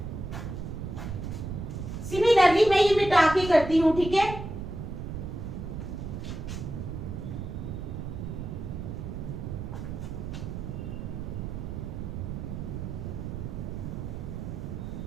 सिमिलरली मैं ये मिटा के करती हूं, ठीक है।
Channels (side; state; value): right; noise; rumble, 6 dB below the sound